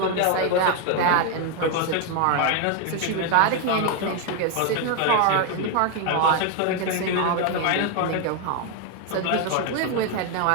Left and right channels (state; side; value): different; both; correlation 0.01